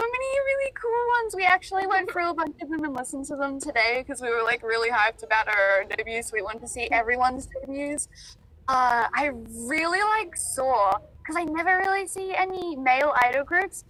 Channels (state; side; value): identical; both; correlation 1.00